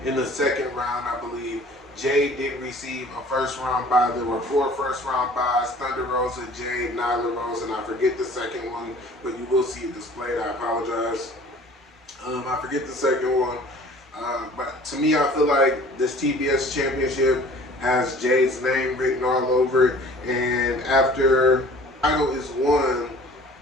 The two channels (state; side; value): normal; both; correlation 0.49